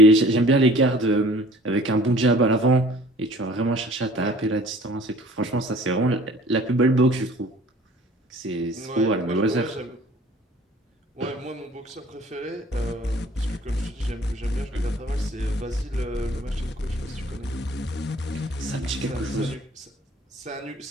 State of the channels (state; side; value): normal; both; correlation 0.50